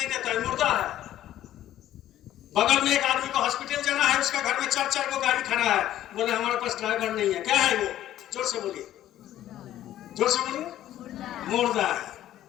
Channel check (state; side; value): quieter; right; 12.7 dB